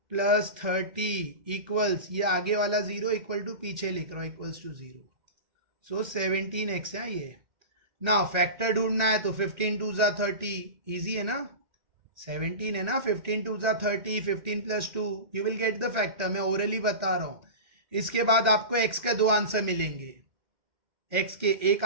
प्लस 30 इक्वल्स, ये आगे वाला 0 इक्वल टू पीछे लिख रहा हूं इक्वल्स टू 0, सो 17x है ये ना। फैक्टर ढूंढना है तो 15 2 जा 30, इजी है ना, 17 है ना, 15 2 जा 30, 15 plus 2, you will get the factor, मैं ओरली बता रहा हूं। इसके बाद आपको x का 2 आंसर मिलेंगे, x के एक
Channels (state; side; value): late; left; 1.9 ms